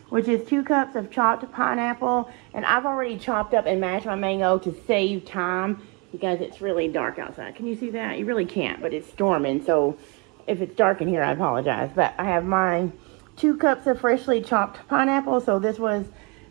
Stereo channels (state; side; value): quieter; left; 30.0 dB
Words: which is 2 cups of chopped pineapple, and I've already chopped up and mashed my mango to save time, because it's really dark outside. Can you see that? You really can't, but it's storming, so if it's dark in here, I apologize. But I have my 2 cups of freshly chopped pineapple. So this was,